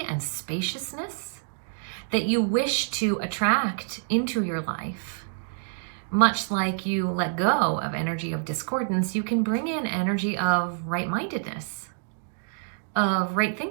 and spaciousness that you wish to attract into your life. Much like you let go of energy of discordance, you can bring in energy of right-mindedness, of right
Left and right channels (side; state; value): left; silent; digital silence